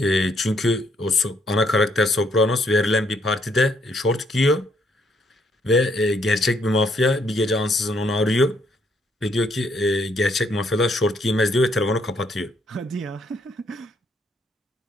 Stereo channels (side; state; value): both; normal; correlation 0.71